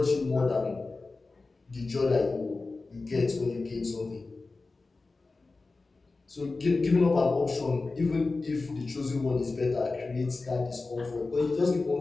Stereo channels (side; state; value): right; quieter; 3.7 dB